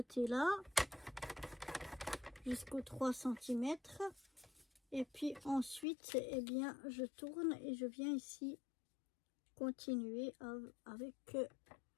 jusqu'aux 3 cm. Et puis ensuite, eh bien, je tourne et je viens ici continuer avec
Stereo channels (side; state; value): right; drops out; at 5.9 s